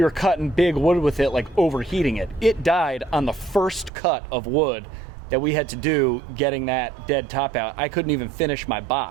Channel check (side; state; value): left; drops out; at 3.9 s